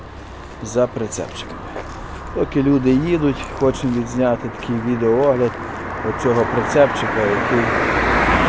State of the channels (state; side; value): identical; both; correlation 1.00